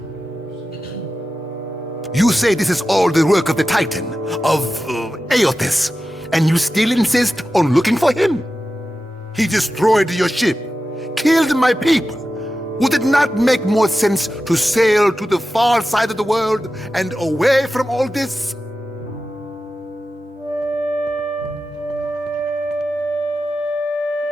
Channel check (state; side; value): normal; both; correlation 0.92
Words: You say this is all the work of the Titan, of Ep8, and you still insist on looking for him? He destroyed your ship, killed my people. Would it not make more sense to sail to the far side of the world and away from all this?